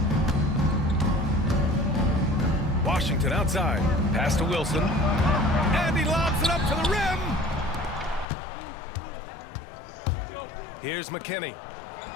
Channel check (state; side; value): drops out; right; at 8.2 s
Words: Washington outside. Pass to Wilson. And he lobs it up to the rim. Here's McKinney.